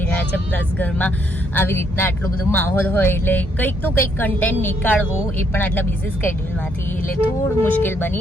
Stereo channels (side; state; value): both; normal; correlation 0.72